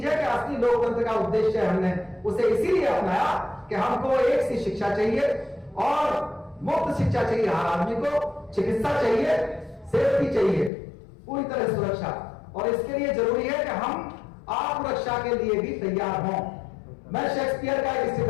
है कि असली लोकतंत्र का उद्देश्य हमने उसे इसीलिए अपनाया कि हमको एक सी शिक्षा चाहिए और मुफ्त शिक्षा चाहिए हर आदमी को, चिकित्सा चाहिए, सेफ्टी चाहिए, पूरी तरह सुरक्षा, और इसके लिए जरूरी है कि हम आत्मरक्षा के लिए भी तैयार हों। मैं शेक्सपियर का एक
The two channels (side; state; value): right; drops out; at 10.7 s